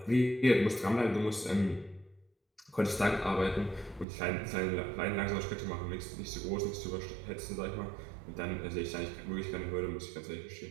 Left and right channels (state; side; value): drops out; left; at 4.0 s